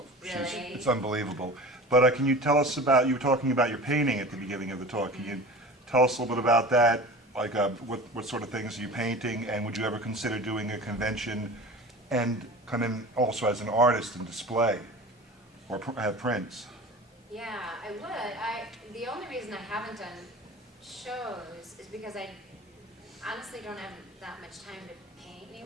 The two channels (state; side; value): normal; both; correlation 0.36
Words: Really? It's unbelievable. But can you tell us about, you were talking about your painting at the beginning of the talk. Can you tell us a little bit about that? Like what sort of things are you painting? And would you ever consider doing a convention and come in also as an artist and display or have prints? Yeah, I would. The only reason I haven't done shows is because I honestly don't have that much time to paint